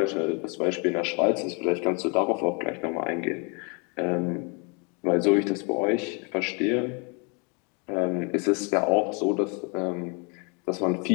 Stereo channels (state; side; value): quieter; right; 34.1 dB